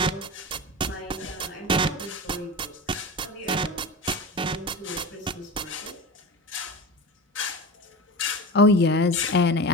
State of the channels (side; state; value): both; normal; correlation 0.28